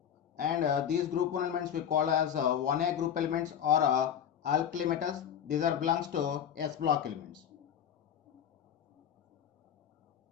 and these group 1 elements we call as 1A group elements or alkali metals. These are belongs to S block elements.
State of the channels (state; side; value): quieter; right; 9.0 dB